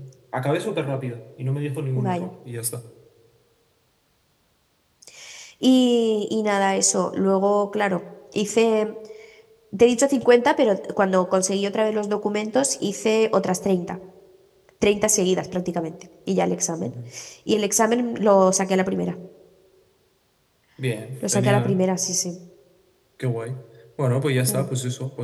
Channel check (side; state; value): both; identical; correlation 1.00